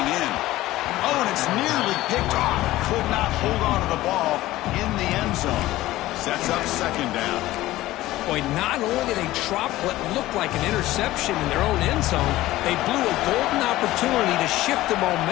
in. Oh, and it's nearly picked off. Could not hold on to the ball in the end zone. Sets up second down. Boy, not only did they drop what looked like an interception in their own end zone, they blew a golden opportunity to shift the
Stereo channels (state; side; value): quieter; right; 16.5 dB